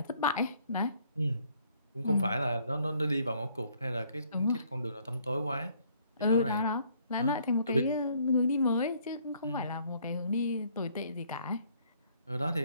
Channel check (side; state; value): both; inverted; correlation -0.65